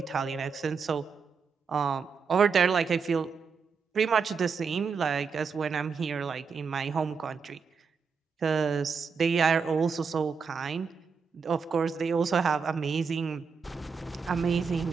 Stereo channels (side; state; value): left; quieter; 5.6 dB